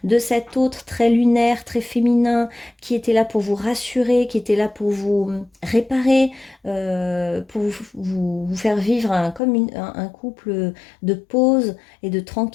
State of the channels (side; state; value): right; drops out; at 9.4 s